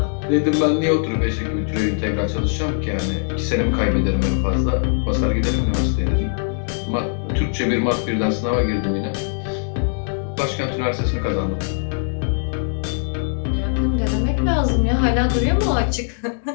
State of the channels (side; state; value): right; silent; digital silence